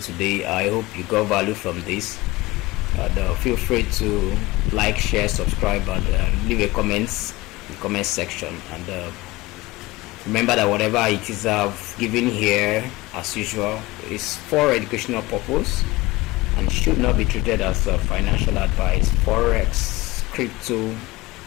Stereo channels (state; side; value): quieter; right; 20.3 dB